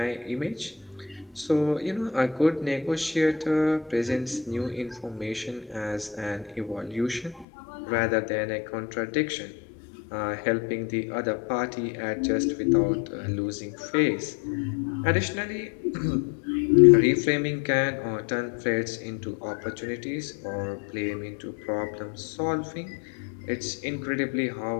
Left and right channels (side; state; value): right; drops out; at 7.5 s